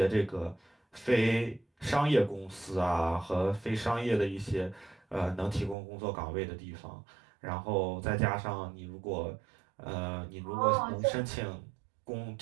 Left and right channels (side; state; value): left; drops out; at 5.8 s